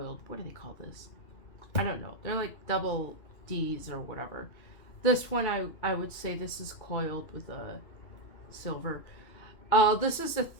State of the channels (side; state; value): right; late; 2.8 ms